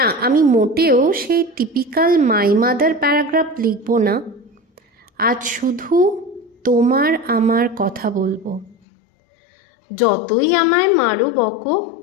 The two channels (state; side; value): drops out; right; at 8.8 s